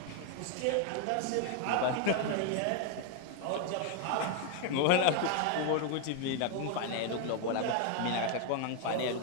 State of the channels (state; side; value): different; both; correlation 0.01